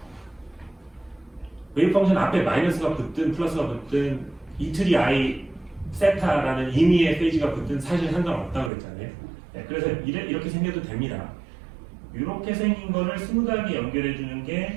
웨이브 펑션 앞에 마이너스가 붙든 플러스가 붙든 이틀이 i 세타라는 임의의 페이지가 붙든 사실 상관없다고 그랬잖아요. 그래서 이렇게 생겨도 됩니다. 이렇게 생긴 거를 스무드하게 연결해 주는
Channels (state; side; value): drops out; left; at 8.7 s